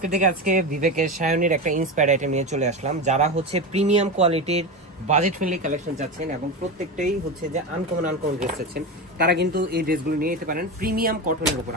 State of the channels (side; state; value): both; normal; correlation 0.20